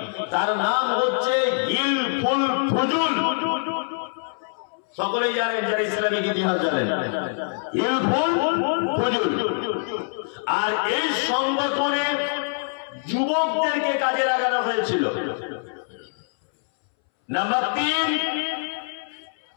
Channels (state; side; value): silent; right; 62 dB below the other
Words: তার নাম হচ্ছে হিলফুল ফুজুল। সকলেই জানেন, যারা ইসলামিক ইতিহাস জানেন, হিলফুল ফুজুল। আর এই সংগঠনে যুবকদেরকে কাজে লাগানো হয়েছিল। নাম্বার 3,